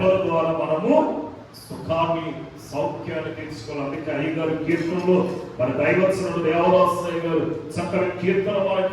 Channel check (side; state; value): both; identical; correlation 1.00